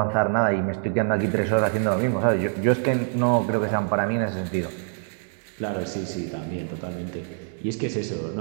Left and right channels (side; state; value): left; silent; 57 dB below the other